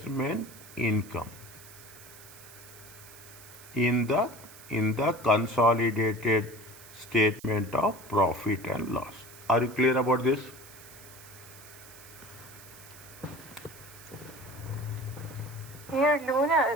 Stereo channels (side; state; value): right; noise; hiss, 19 dB below the sound